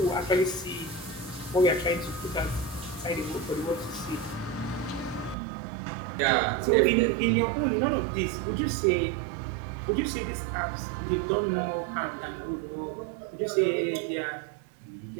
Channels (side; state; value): left; drops out; at 5.4 s